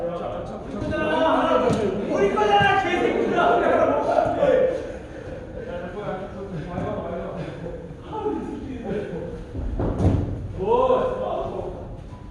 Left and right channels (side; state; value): both; identical; correlation 1.00